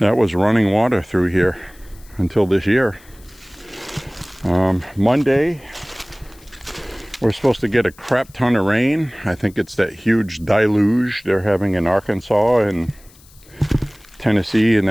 was running water through here until this year. Monday, we're supposed to get a crap ton of rain. I think it's that huge deluge they're having in Arkansas and Tennessee and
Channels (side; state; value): left; noise; hiss, 26 dB below the sound